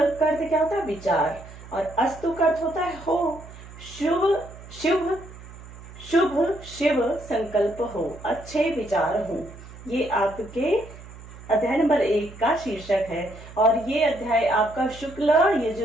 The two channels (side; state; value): right; noise; hum, 17 dB below the sound